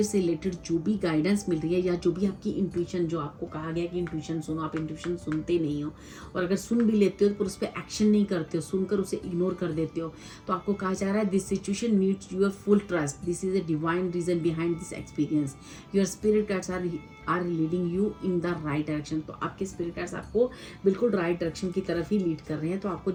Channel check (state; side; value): identical; both; correlation 1.00